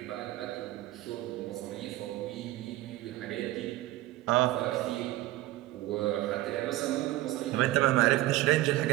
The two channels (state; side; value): quieter; left; 16.7 dB